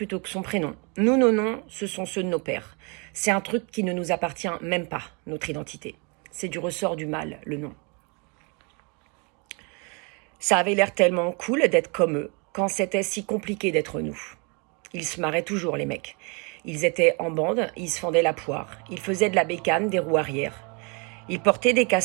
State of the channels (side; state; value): left; quieter; 32.8 dB